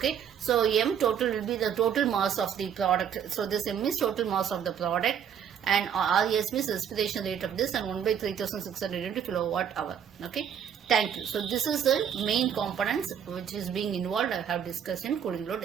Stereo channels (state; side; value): quieter; left; 8.4 dB